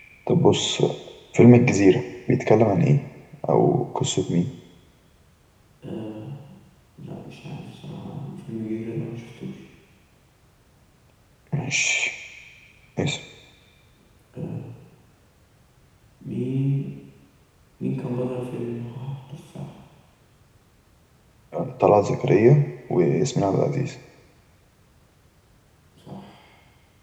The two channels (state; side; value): identical; both; correlation 1.00